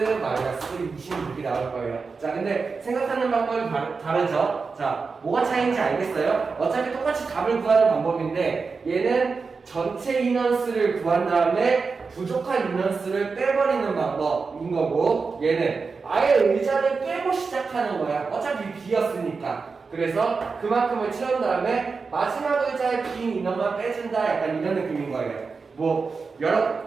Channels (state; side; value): quieter; left; 4.7 dB